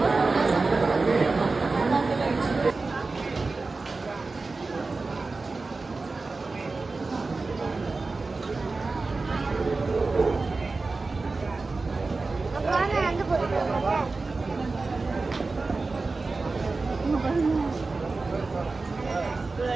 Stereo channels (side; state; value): left; quieter; 3.8 dB